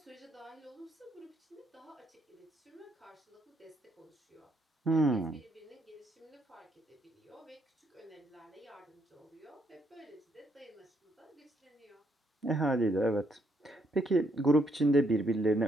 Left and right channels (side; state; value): both; normal; correlation 0.73